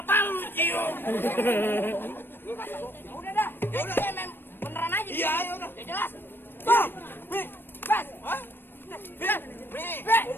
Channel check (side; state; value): right; late; 0.098 ms